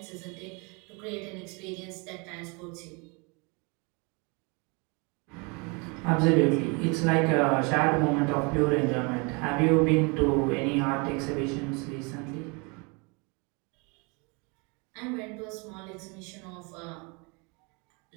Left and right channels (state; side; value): quieter; left; 30.8 dB